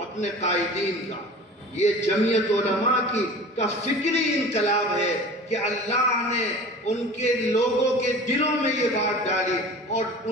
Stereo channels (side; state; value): both; normal; correlation 0.40